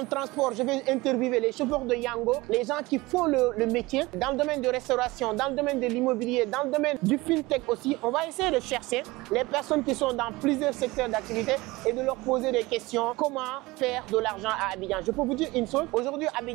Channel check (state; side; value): quieter; left; 21.2 dB